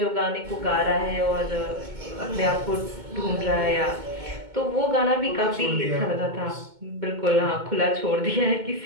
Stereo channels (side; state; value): left; late; 2.2 ms